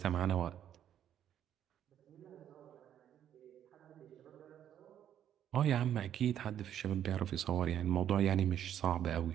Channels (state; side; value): quieter; left; 10.2 dB